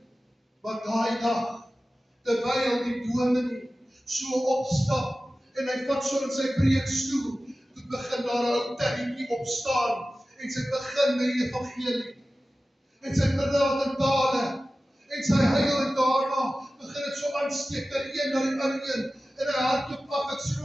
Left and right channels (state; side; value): normal; both; correlation 0.95